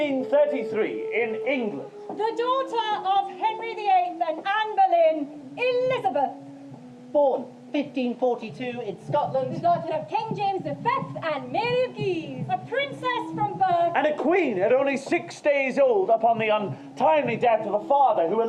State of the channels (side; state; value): both; identical; correlation 1.00